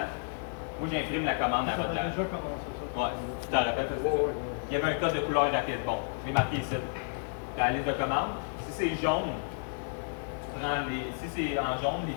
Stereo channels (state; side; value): silent; right; 57 dB below the other